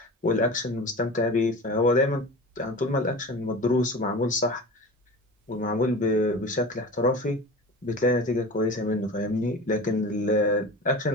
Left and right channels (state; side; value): normal; both; correlation 0.33